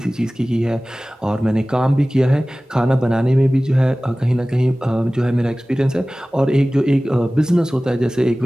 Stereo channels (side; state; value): both; normal; correlation 0.98